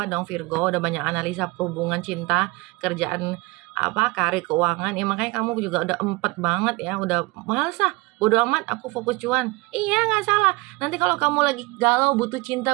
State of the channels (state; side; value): quieter; left; 23.9 dB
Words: dong Virgo, udah banyak analisa hubungan cinta, kerjaan karir, keuangan ya, makanya kamu juga udah empet banget ya, udah males bodo amat, aku fokus cuan. Iya, nggak salah. Nanti kalau kamu lagi galau, butuh cinta,